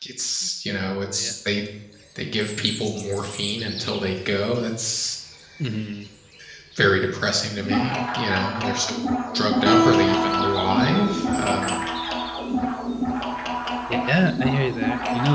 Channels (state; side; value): identical; both; correlation 1.00